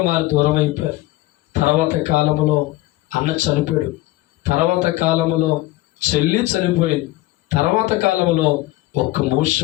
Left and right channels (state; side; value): quieter; right; 17.9 dB